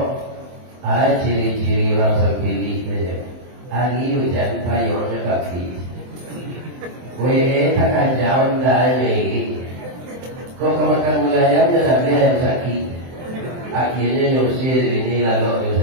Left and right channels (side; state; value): left; late; 23 ms